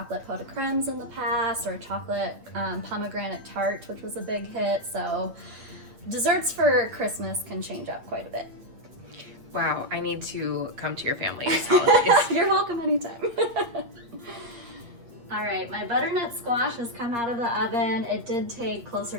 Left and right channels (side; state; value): left; late; 8.5 ms